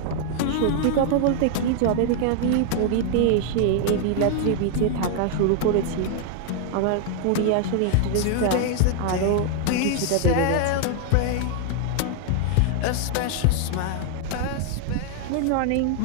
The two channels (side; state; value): both; different; correlation 0.00